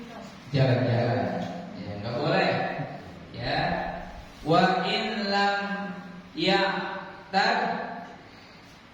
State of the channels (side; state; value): both; identical; correlation 1.00